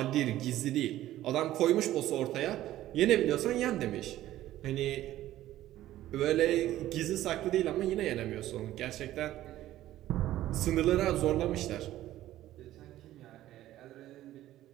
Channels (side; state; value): left; quieter; 14.1 dB